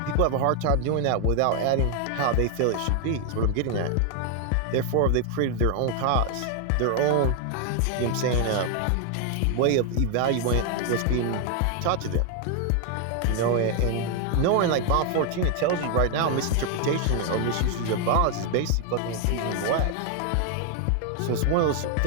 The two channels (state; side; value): different; both; correlation 0.00